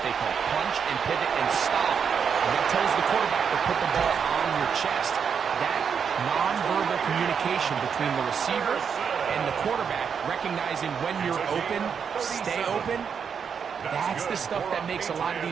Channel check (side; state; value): left; quieter; 6.8 dB